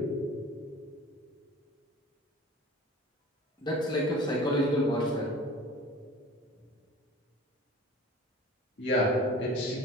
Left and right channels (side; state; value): both; normal; correlation 0.42